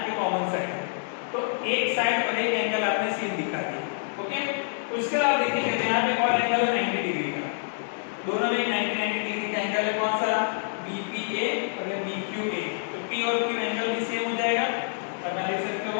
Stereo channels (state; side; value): silent; right; digital silence